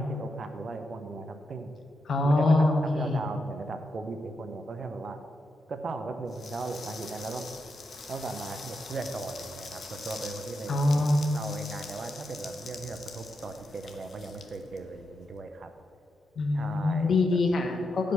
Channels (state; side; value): normal; both; correlation 0.84